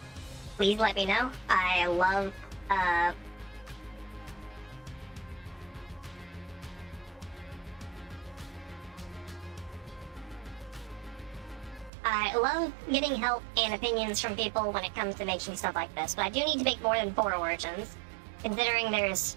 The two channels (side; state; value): left; drops out; at 11.9 s